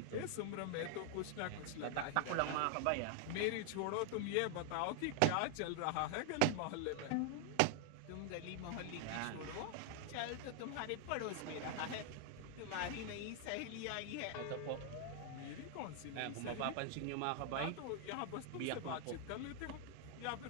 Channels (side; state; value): both; different; correlation 0.00